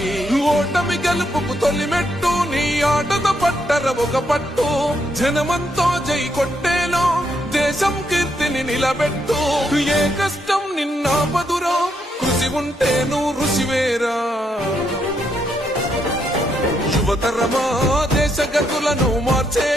ఓటమి గెలుపుకు తొలిమెట్టు నీ ఆటద పట్టర ఒక పట్టు జనమంతో జై కొట్టేలో దేశం కీర్తిని నిలబెట్టు ఏ కష్టం నిన్నాపదురో కృషి ఉంటే నువ్వు రుచివేరా యువతరమా దేశ గతులను మార్చే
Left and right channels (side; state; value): both; normal; correlation 0.77